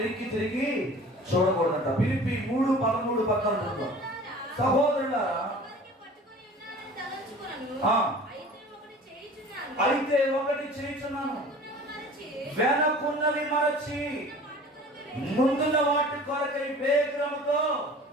తిరిగి చూడకూడదంట. ఫిలిప్పీ 3:13-14 చదువుతాం. సహోదరులారా, అయితే ఒకటి చేయుచున్నాను, వెనకున్నవి మరచి ముందున్న వాటి కొరకై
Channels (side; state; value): both; normal; correlation 0.43